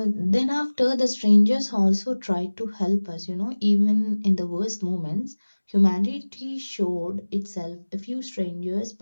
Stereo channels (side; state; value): both; inverted; correlation -1.00